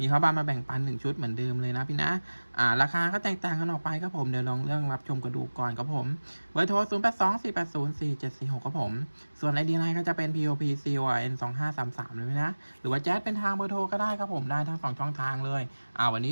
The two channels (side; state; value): both; inverted; correlation -1.00